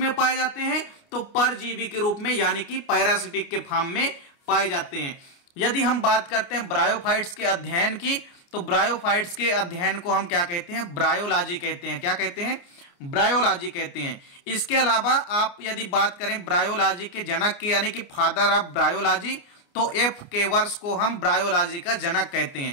पाए जाते हैं, तो परजीवी के रूप में यानी कि पैरासिटिक के फॉर्म में पाए जाते हैं। यदि हम बात करते हैं ब्रायोफाइट्स के अध्ययन की, तो ब्रायोफाइट्स के अध्ययन को हम क्या कहते हैं, ब्रायोलॉजी कहते हैं। क्या कहते हैं, ब्रायोलॉजी कहते हैं। इसके अलावा आप यदि बात करें ब्रायोलॉजी के जनक की यानी कि फादर ऑफ ब्रायोलॉजी, तो F केवर्स को हम ब्रायोलॉजी का जनक कहते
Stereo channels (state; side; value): late; right; 29 ms